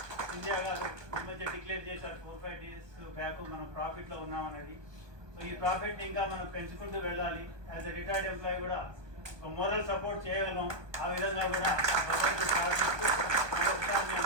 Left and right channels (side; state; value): left; late; 1.2 ms